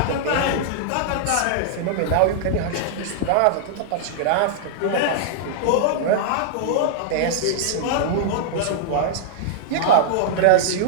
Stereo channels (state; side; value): different; both; correlation -0.01